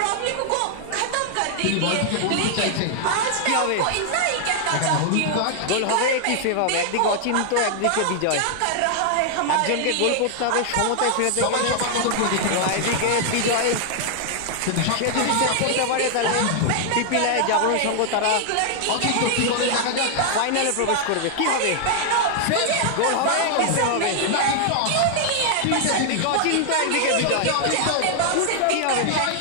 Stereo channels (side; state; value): both; different; correlation 0.00